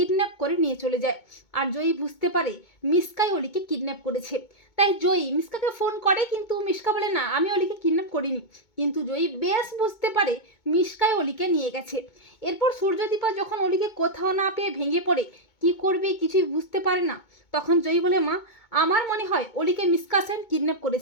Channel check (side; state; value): right; late; 2.2 ms